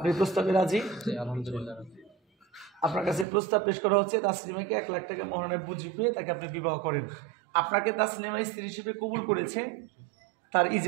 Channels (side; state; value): left; drops out; at 3.2 s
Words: প্রস্তাবে রাজি? আলহামদুলিল্লাহ। আপনার কাছে প্রস্তাব পেশ করা হচ্ছে তাসলিমাকে 1 লাখ টাকা মোহরের বুঝে পেয়ে তাকে আপনি বিবাহ করেন। আপনাকে তাসলিমা স্ত্রী হিসেবে কবুল করেছে, তার